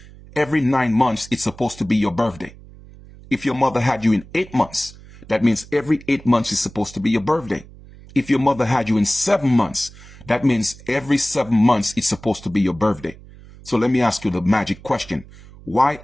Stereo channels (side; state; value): right; noise; hum, 20 dB below the sound